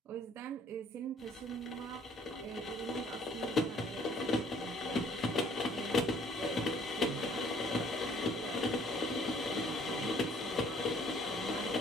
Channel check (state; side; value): normal; both; correlation 0.59